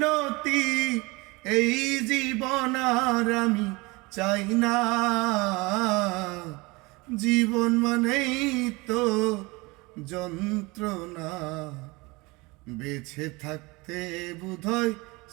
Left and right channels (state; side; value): quieter; left; 24.6 dB